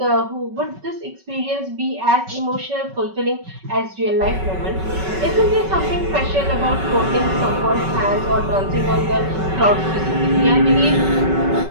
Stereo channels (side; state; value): left; late; 5.3 ms